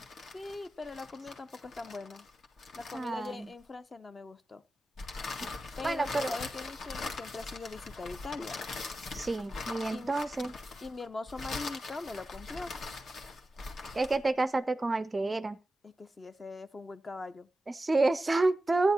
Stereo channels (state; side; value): normal; both; correlation 0.93